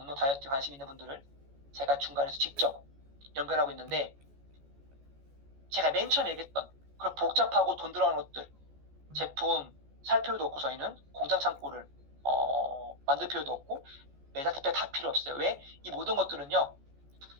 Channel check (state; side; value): late; left; 14 ms